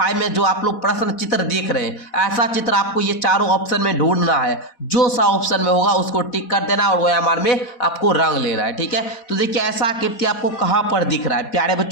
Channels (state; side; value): late; right; 4.1 ms